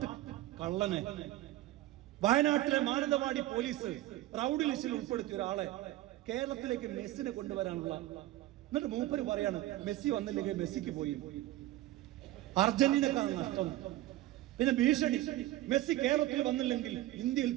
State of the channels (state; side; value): quieter; left; 16.0 dB